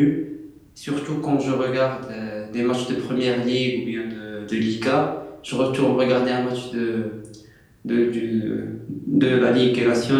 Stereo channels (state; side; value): identical; both; correlation 1.00